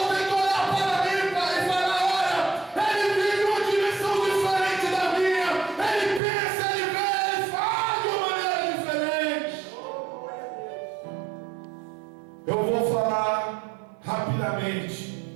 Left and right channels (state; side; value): drops out; left; at 6.2 s